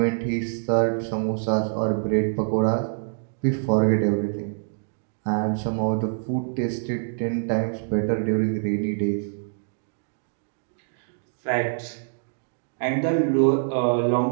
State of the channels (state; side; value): silent; left; digital silence